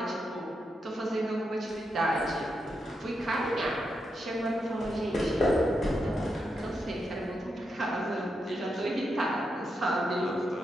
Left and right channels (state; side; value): normal; both; correlation 0.84